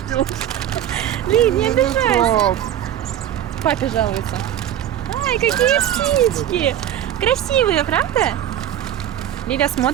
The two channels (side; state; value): left; quieter; 11.3 dB